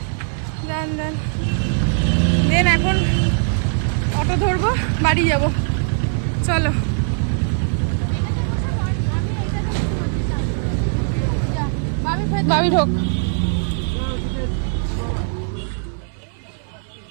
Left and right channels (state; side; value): silent; left; 61 dB below the other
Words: দেন এখন অটো ধরবো, বাড়ি যাব। চলো বাবি ঢোক।